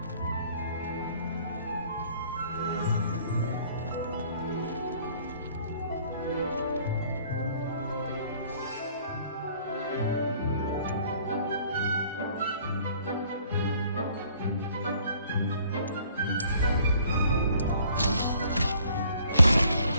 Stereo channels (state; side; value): inverted; both; correlation -0.59